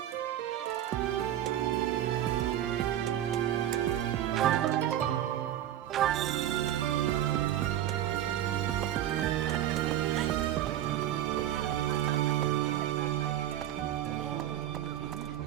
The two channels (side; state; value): left; quieter; 12.0 dB